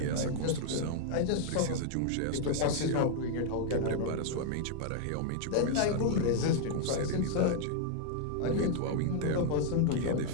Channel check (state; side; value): different; both; correlation 0.00